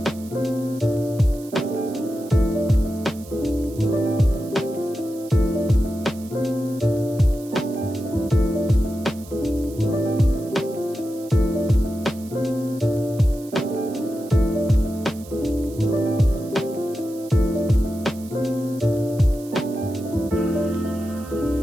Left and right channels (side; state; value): right; noise; hiss, 21 dB below the sound